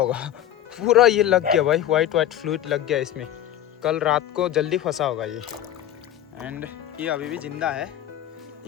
पूरा ये लग गया भाई, वाइट वाइट फ्लूइड लग गया इसमें। कल रात को जल्दी फंसा होगा ये। एंड ये अभी भी जिंदा है,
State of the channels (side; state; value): right; quieter; 11.3 dB